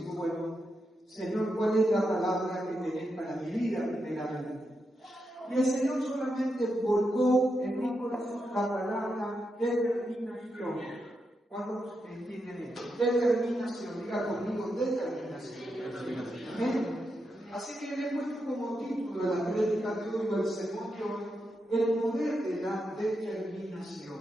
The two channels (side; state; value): both; normal; correlation 0.85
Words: digo, bueno, Señor, ¿cuál es la palabra que tenés para mi vida primeramente? Y el Señor solamente volcó en mi corazón la palabra determinación. ¿Cuántos entienden esto? Determinación, diga conmigo, determinación. ¿Amén? Así que le he puesto como título a la prédica de hoy, o al sermón de hoy, el poder de la